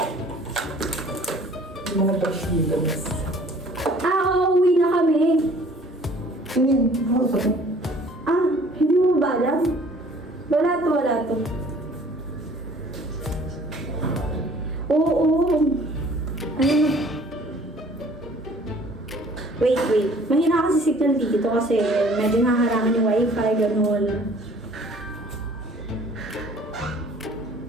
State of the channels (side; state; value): both; normal; correlation 0.53